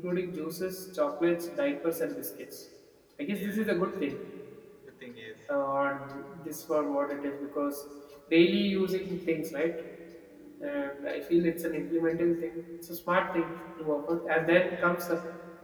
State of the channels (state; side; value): identical; both; correlation 1.00